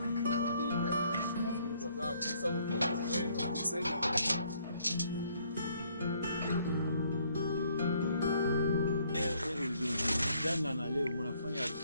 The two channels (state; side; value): inverted; both; correlation -0.66